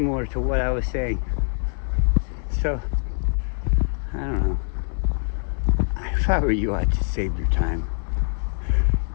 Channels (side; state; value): right; silent; digital silence